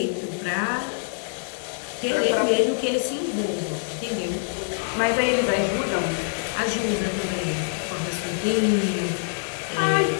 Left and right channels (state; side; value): silent; right; digital silence